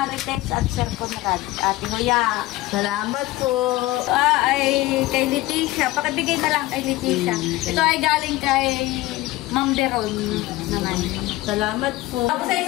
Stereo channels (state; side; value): quieter; right; 18.2 dB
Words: at Sir Conrad. Tinuya. Salamat po. Ay kay Leticia. Pakibigay na lang kay Leticia. Ito ay galing kay Ma'am Beron naman. Salamat po. Tapos ay